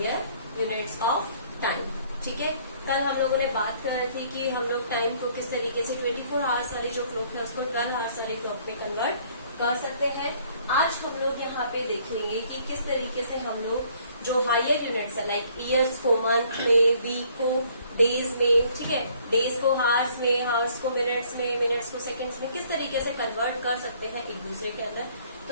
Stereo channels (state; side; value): inverted; both; correlation -0.61